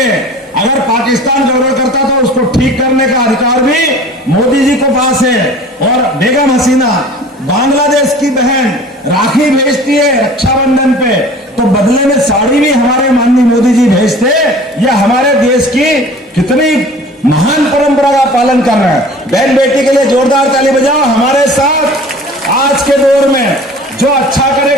अगर पाकिस्तान गड़बड़ करता तो उसको ठीक करने का अधिकार भी मोदी जी के पास है। और बेगम हसीना बांग्लादेश की बहन राखी भेजती है रक्षाबंधन पे, तो बदले में साड़ी भी हमारे माननीय मोदी जी भेजते। यह हमारे देश की कितनी महान परंपरा का पालन कर रहे हैं। बहन बेटी के लिए जोरदार ताली बजाओ। हमारे साथ आज के दौर में जो अच्छा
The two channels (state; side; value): normal; both; correlation 0.44